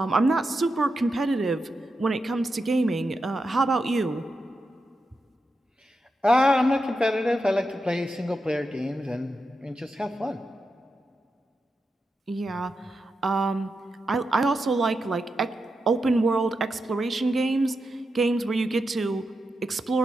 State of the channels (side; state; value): both; normal; correlation 0.88